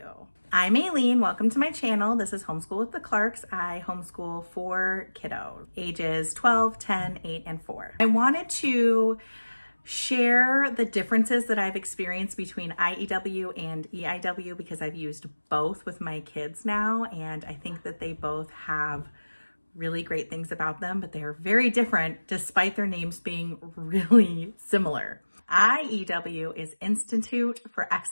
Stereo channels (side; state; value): both; inverted; correlation -1.00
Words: I'm Aileen, welcome to my channel. This is Homeschool with the Clarks. I homeschool 4 kiddos, ages 12, 10, 8, and 4. I wanted to share the differences that I've experienced between IEW and EIW because I've used both with my kids now, and I think that they both have really great things about them, but they are very different despite their names being really similar. IEW is Institute for